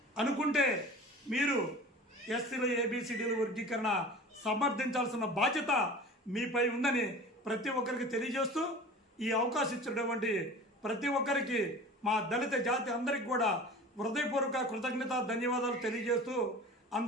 అనుకుంటే మీరు ఎస్సీల ఏబిసిడీల వర్గీకరణ సమర్థించాల్సిన బాధ్యత మీపై ఉందని ప్రతి ఒక్కరికి తెలియజేస్తూ ఈ అవకాశం ఇచ్చినటువంటి ప్రతి ఒక్కరికి మా దళిత జాతి అందరికి కూడా హృదయపూర్వక కృతజ్ఞత ధన్యవాదాలు తెలియజేస్తూ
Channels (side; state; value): both; normal; correlation 0.39